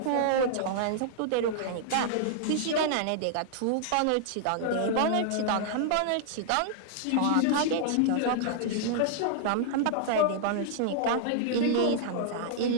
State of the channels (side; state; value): both; different; correlation -0.01